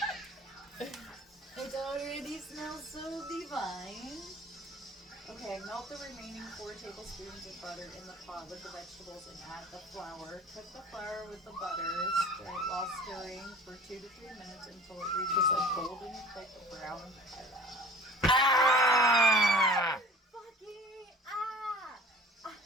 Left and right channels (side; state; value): both; normal; correlation 0.45